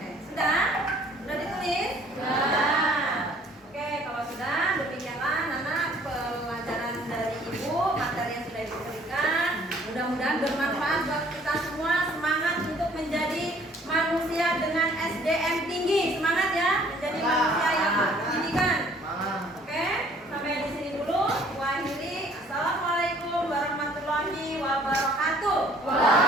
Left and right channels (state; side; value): normal; both; correlation 0.57